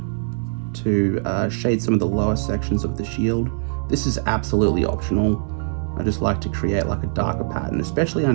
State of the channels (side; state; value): left; silent; 64 dB below the other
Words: to shade some of the lower sections of the shield. This is absolutely optional. I just like to create like a darker pattern, especially